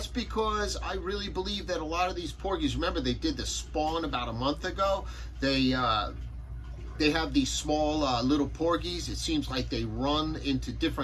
because I really believe that a lot of these porgies, remember they did the spawn about a month ago. They have these small little porgies. It seems like they run into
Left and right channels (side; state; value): both; identical; correlation 1.00